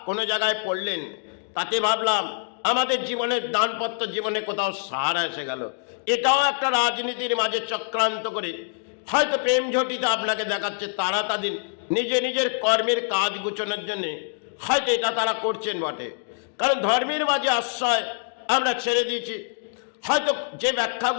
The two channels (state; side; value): silent; right; digital silence